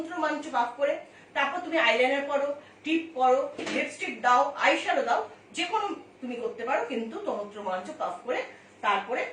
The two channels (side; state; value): both; identical; correlation 1.00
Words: রোমাঞ্চ পাক করে, তারপর তুমি আইলাইনার পরো, টিপ পরো, লিপস্টিক দাও, আইশ্যাডো দাও, যে কোনো তুমি করতে পারো, কিন্তু তন্ত্র রোমাঞ্চ পাক করে তারপরে